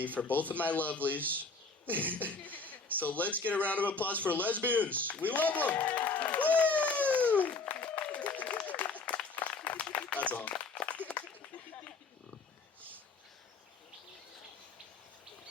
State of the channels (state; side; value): quieter; right; 3.9 dB